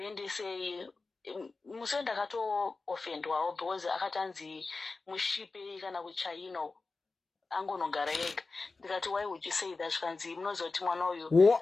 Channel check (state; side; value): quieter; right; 3.8 dB